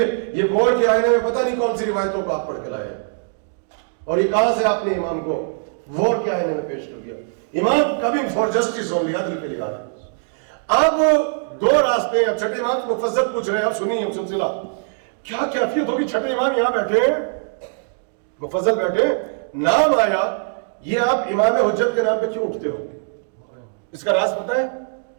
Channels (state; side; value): silent; left; digital silence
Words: گور کے آئینے میں پتہ نہیں کون سی روایتوں کو آپ پڑھ کے لائے ہیں، اور یہ کہاں سے آپ نے امام کو وور کے آئینے میں پیش کر دیا۔ امام کبھی فار جسٹس ہو لیا، عدل کے لیے آ رہا ہے۔ اب دو راستے ہیں، اب چھٹے امام کو مفصل پوچھ رہے ہیں، اب سنیے اب سلسلہ کیا کیفیت ہوگی۔ چھٹے امام یہاں بیٹھے ہیں، مفضل بیٹھے، نام آیا، یہ آپ امام حجت کے نام پہ کیوں اٹھتے ہو؟ اس کا راز پتہ ہے؟